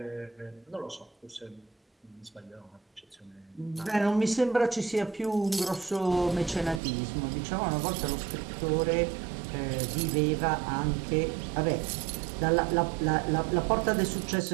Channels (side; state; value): left; drops out; at 6.8 s